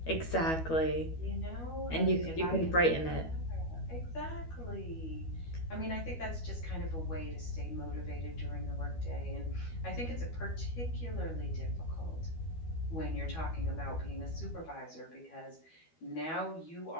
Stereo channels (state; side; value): late; right; 12 ms